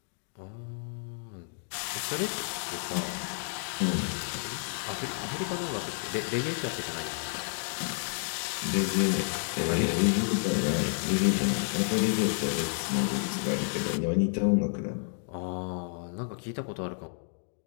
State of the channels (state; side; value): silent; right; digital silence